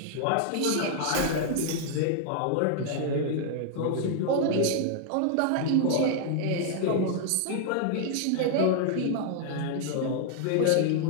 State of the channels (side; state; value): both; different; correlation -0.01